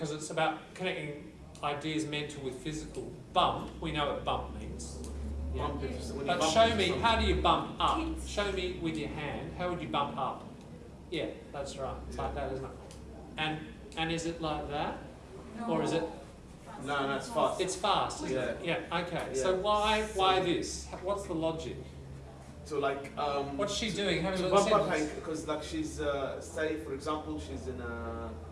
it's about connecting ideas mental with physical. Bump. We know what bump means. Yeah. Bump it, when you But bump show into me, something. how do you bump up? Kids. Show me with your hand, how would you bump up? Yeah, that's right. It's like that, isn't it? And is it like that? Or is it, No, it's fast. it's fast, isn't it? Yeah, okay. So why this? What's the logic? So like, What's she doing? Have a to look bump at up the Hank, because like she's, say for example, she's in a,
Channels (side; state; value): both; identical; correlation 1.00